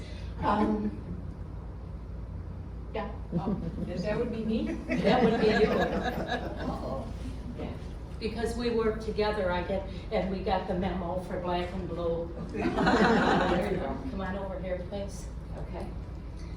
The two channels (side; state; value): both; identical; correlation 1.00